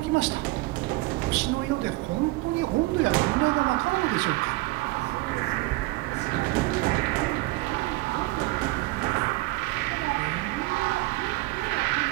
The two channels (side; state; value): left; quieter; 21.1 dB